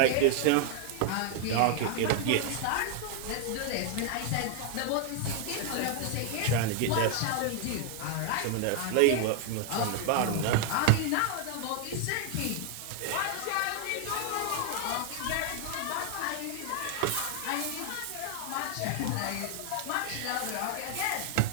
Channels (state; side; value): different; both; correlation 0.00